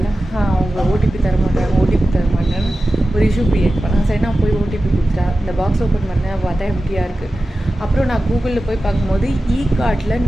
அவங்க ஓடிபி தர மாட்டேன்னு ஒரு இஷ்யூ க்ரியேட் பண்ணேன். சரி, நான் போய் ஓடிபி கொடுத்துட்டா. இந்த பாக்ஸ் ஓப்பன் பண்ணேன், பார்த்தா எம்டியாக இருக்குது. அப்புறம் நான் கூகுளில் போய் பார்க்கும்போது கார்ட்டில்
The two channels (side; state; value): both; normal; correlation 0.94